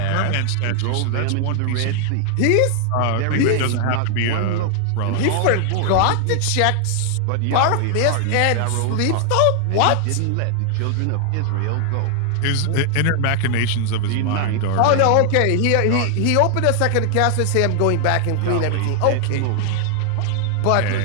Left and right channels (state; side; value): different; both; correlation 0.00